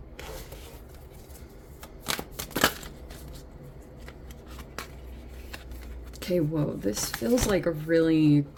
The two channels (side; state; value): both; identical; correlation 1.00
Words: Okay, whoa, this feels like a really